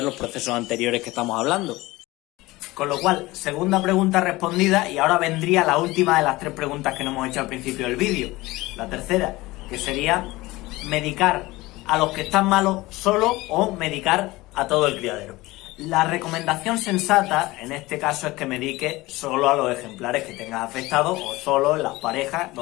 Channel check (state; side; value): quieter; right; 20.0 dB